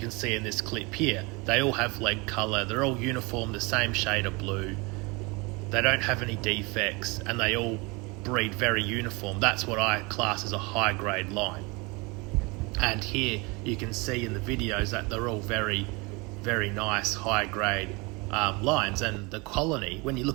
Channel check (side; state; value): left; quieter; 27.2 dB